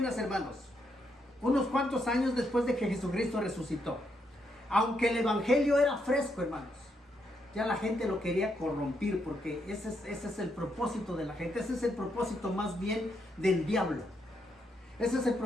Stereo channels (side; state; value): both; normal; correlation 0.78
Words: hermanos, unos cuantos años después de que Jesucristo resucitó. Aunque el Evangelio era fresco, hermanos, ya la gente lo quería corrompir, porque ese es el propósito de la gente. Ese es el propósito más bien del diablo. Ese es el